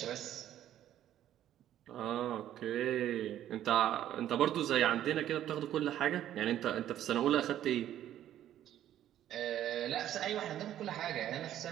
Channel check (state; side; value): quieter; left; 11.8 dB